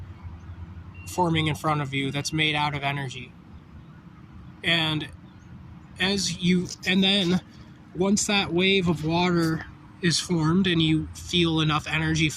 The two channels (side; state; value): both; identical; correlation 1.00